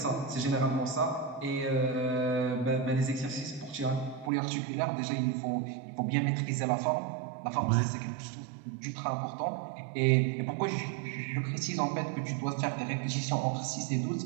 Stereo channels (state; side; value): drops out; left; at 4.3 s